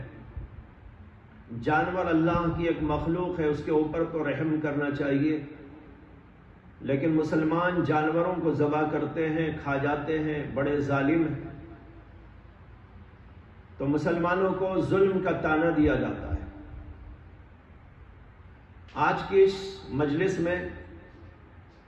جانور اللہ کی ایک مخلوق ہے، اس کے اوپر تو رحم کرنا چاہیے، لیکن مسلمان جانوروں کو ذبح کرتے ہیں، کھا جاتے ہیں، بڑے ظالم ہیں، تو مسلمانوں کو ظلم کا طعنہ دیا جاتا ہے۔ آج کی اس مجلس میں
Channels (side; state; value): both; identical; correlation 1.00